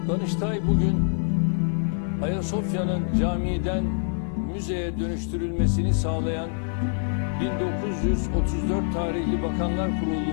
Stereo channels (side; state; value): right; silent; digital silence